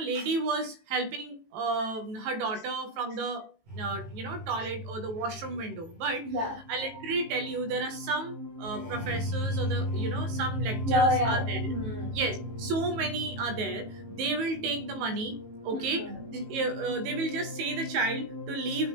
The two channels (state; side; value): late; left; 18 ms